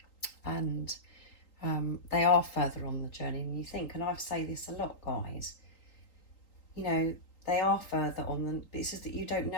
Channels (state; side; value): late; right; 3.8 ms